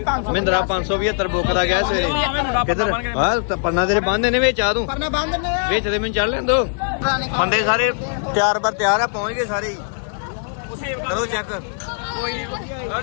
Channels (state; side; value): silent; right; digital silence